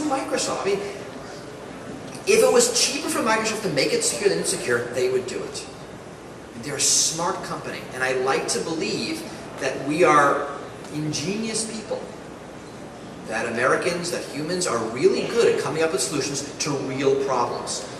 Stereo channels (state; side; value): identical; both; correlation 1.00